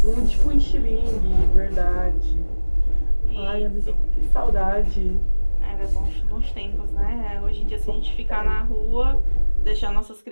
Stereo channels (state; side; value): inverted; both; correlation -1.00